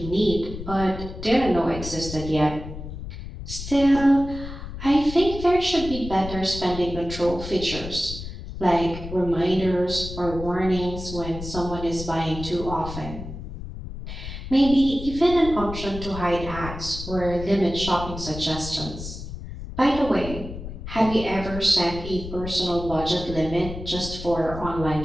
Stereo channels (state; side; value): noise; left; rumble, 10 dB below the sound